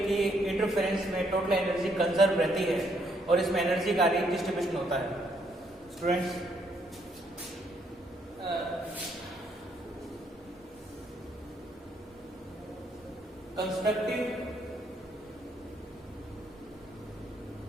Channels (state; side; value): normal; both; correlation 0.72